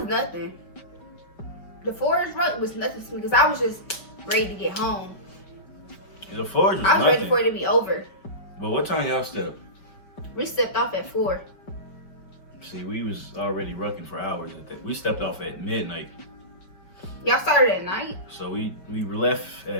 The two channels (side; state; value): right; late; 5.1 ms